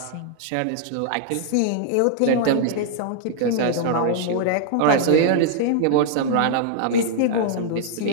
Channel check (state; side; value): different; both; correlation -0.01